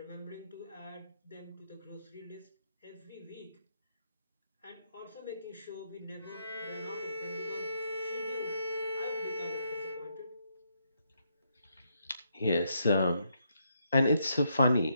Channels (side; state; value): both; inverted; correlation -0.78